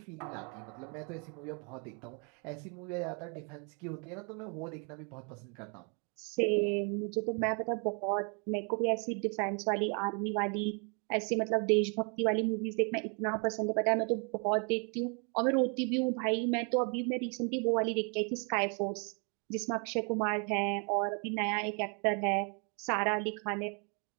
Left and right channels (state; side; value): quieter; left; 38.0 dB